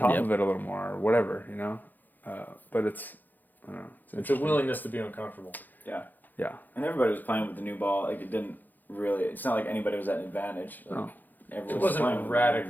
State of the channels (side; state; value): right; late; 0.086 ms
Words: of it a little more or whatever, But it's, I don't know. It's a willingness to be uncomfortable. Yeah. Yeah. And everybody was playing with the new ball. It didn't really, it's not like anybody was at an advantage. No. It wasn't